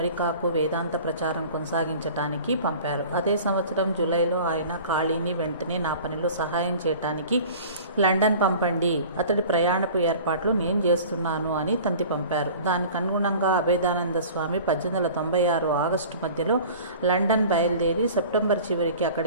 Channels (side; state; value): both; inverted; correlation -0.43